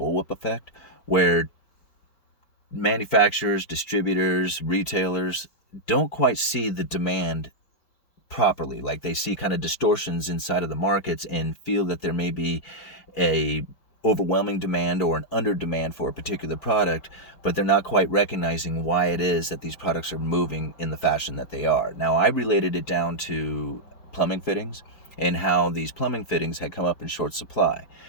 effect, where manufacturers, distributors, retailers don't quite see the demand properly. Like they see kind of distortions inside of the markets and feel that there may be a overwhelming demand or an under demand for a particular product, but they're not quite recognizing why it is that these products are moving in the fashion that they are. Now, I related it down to plumbing fittings and how these plumbing fittings had come up in short supply.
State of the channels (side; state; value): right; late; 4.7 ms